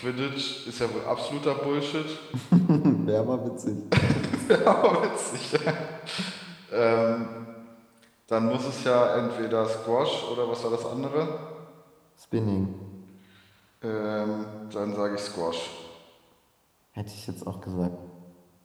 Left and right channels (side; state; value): both; identical; correlation 1.00